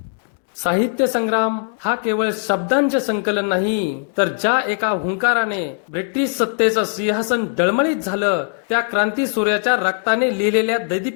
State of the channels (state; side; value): silent; right; 66 dB below the other